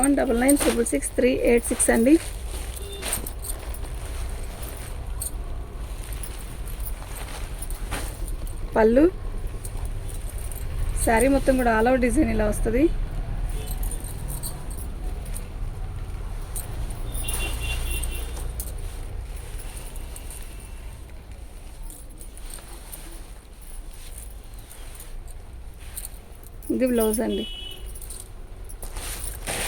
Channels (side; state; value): both; identical; correlation 1.00